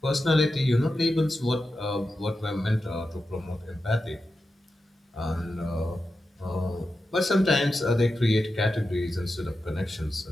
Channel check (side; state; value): both; normal; correlation 0.90